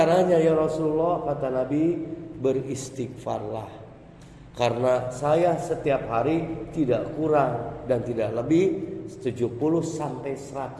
ya Rasulullah? Kata Nabi, beristighfarlah. Karena saya setiap hari tidak kurang dan tidak lebih 70 sampai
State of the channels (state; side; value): identical; both; correlation 1.00